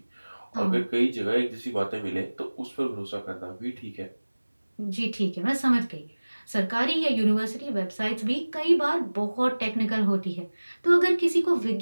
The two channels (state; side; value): inverted; both; correlation -1.00